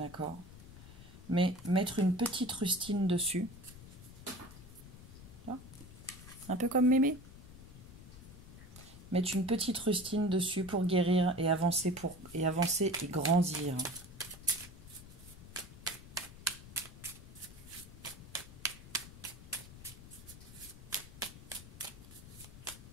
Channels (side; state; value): left; noise; rumble, 16 dB below the sound